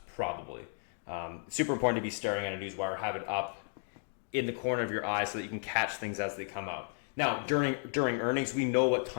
probably. It's super important to be staring at a Newswire, have it up in the corner of your eye so that you can catch things as they come out. Now, during earnings, we know what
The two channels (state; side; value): silent; right; 55 dB below the other